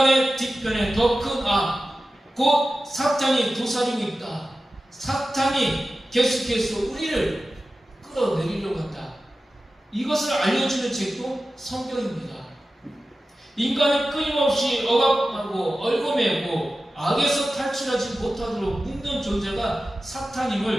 뒤편에 더 큰 악, 곧 사탄이 도사리고 있다. 사탄이 계속해서 우리를 끌어내리려고 한다. 이것을 알려주는 책도 성경입니다. 인간을 끊임없이 억압하고 얽어매고 악에서 탈출하지 못하도록 묶는 존재가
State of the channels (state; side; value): normal; both; correlation 0.94